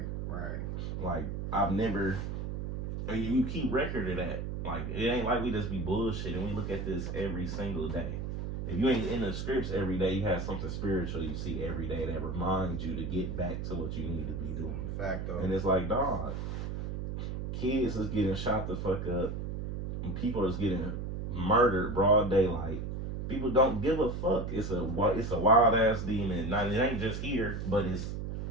Like, I've never, and you keep record of that. Like, it ain't like we just be bullshitting. We look at this every single day. If you ain't in the scripts every day, you have something spiritual you see every day that reminds you to get back to what you need to be doing. Fact though. And it's like, dog, kids is getting shot the fuck up, and people is getting murdered broad daylight. People don't give a fuck. It's a wild ass demon. Now, it ain't just here, but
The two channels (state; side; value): noise; right; hum, 4 dB below the sound